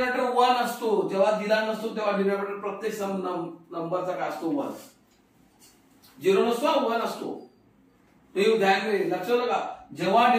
1 असतो. जेव्हा दिला नसतो तेव्हा डिनॉमिनेटर प्रत्येक नंबरचा काय असतो? 1. 0 नसतो, 1 असतो. ते ध्यान दे, लक्षात का? जेव्हा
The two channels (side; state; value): both; identical; correlation 1.00